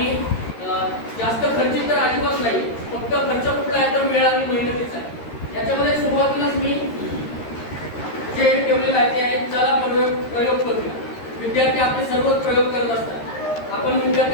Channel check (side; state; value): right; late; 13 ms